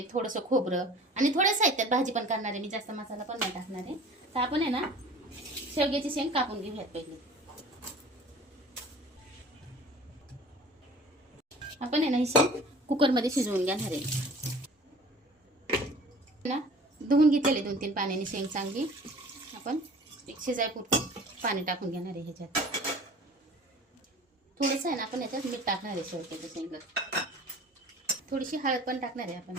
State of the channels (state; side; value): normal; both; correlation 0.44